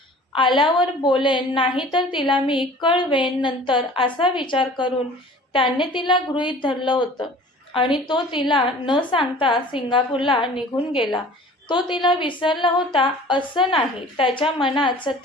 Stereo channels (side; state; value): both; normal; correlation 0.46